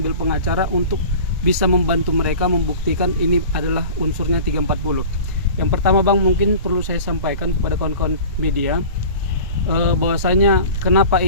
pengacara untuk bisa membantu mereka membuktikan ini adalah unsurnya 340. Yang pertama Bang, mungkin perlu saya sampaikan kepada kawan-kawan media bahwasanya kenapa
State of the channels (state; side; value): inverted; both; correlation -0.39